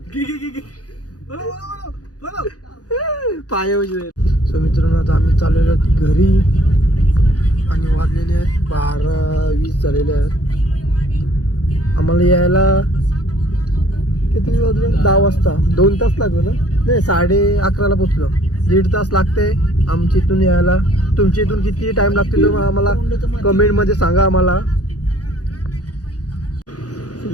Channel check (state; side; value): late; right; 0.68 ms